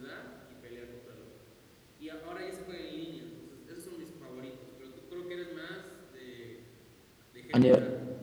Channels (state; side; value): identical; both; correlation 1.00